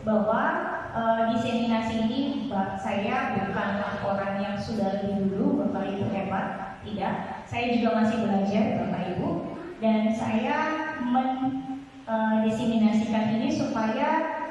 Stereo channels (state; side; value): identical; both; correlation 1.00